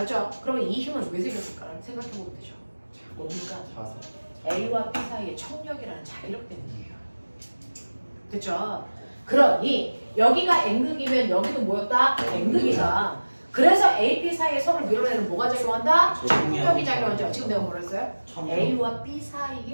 그러면 이 힘은 왜 생겼을까? 생각해보면 되죠. 뭡니까? 자석. A와 B 사이의 청력이라는 자기력 때문이에요. 됐죠? 그러니 여기가 N극이면 여기도 뭐였다? N극이다. 그래서 A, B 사이에 서로 밀어내는 뭐가 작용한다? 청력이 작용하죠. 지금 내가 뭐라 했어요? A와 B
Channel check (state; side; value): inverted; both; correlation -1.00